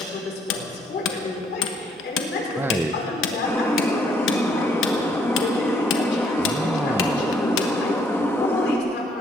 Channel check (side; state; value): both; normal; correlation 0.68